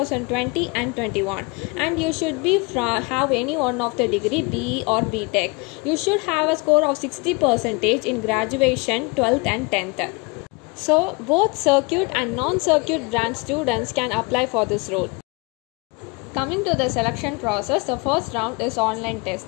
and 21, and you should be have any one of the degree, BE or BTech. You should have a score of 60% in graduation, 12th and 10th. So both circuit and non-circuit branch students can apply for this role. Coming to the selection process, the first round is online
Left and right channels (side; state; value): right; quieter; 28.3 dB